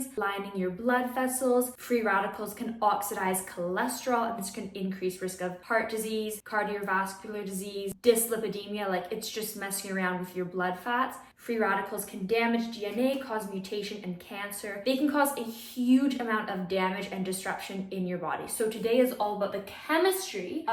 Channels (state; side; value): identical; both; correlation 1.00